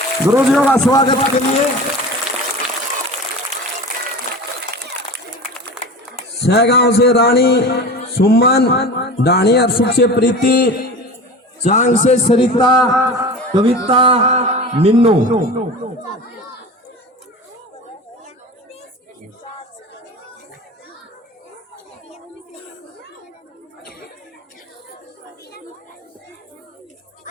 गुरुजियों का स्वागत के लिए। सहगांव से रानी सुमन, डाणी अरसुख से प्रीति, चांग से सरिता, कविता, मिन्नू।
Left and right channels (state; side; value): normal; both; correlation 0.34